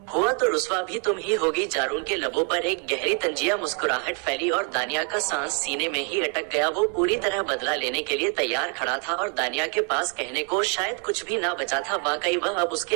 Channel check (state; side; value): quieter; left; 38.3 dB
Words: हुआ तो रुस्वा भी तुम ही होगी। जारून के लबों पर एक गहरी तंजिया मुस्कुराहट फैली और दानिया का सांस सीने में ही अटक गया। वो पूरी तरह बदला लेने के लिए तैयार खड़ा था और दानिया के पास कहने को शायद कुछ भी ना बचा था। वाकई वह अब